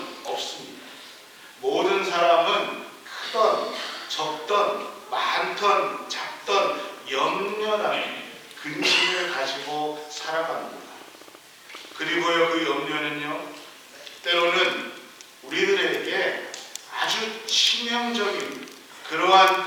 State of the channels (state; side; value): identical; both; correlation 1.00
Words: 없습니다. 모든 사람은 크던 적던 많던 작던 염려라는 근심을 가지고 살아갑니다. 그리고요, 그 염려는요, 때로는 우리들에게 아주 치명적인 그러한